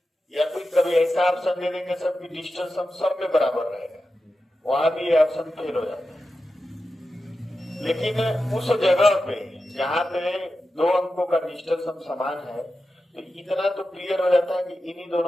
या कोई कभी ऐसा ऑप्शन दे देंगे सबकी डिजिटल सम सब में बराबर रहेगा, वहां भी ये ऑप्शन फेल हो जाता है। लेकिन उस जगह पे जहां पे दो अंकों का डिजिटल सम समान है, तो इतना तो क्लियर हो जाता है कि इन्हीं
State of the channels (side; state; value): both; normal; correlation 0.91